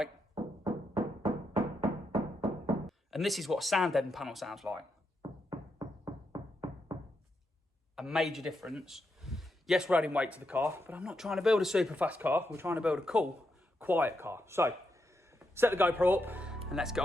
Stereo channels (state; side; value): normal; both; correlation 0.83